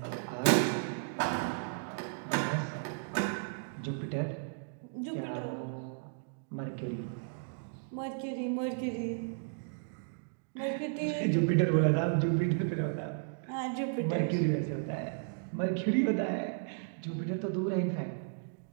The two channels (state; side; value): silent; left; digital silence